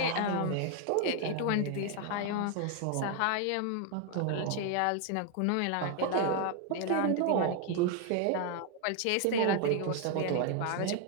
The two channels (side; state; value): both; different; correlation 0.00